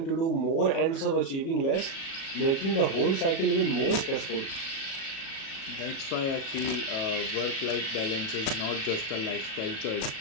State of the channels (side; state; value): right; late; 37 ms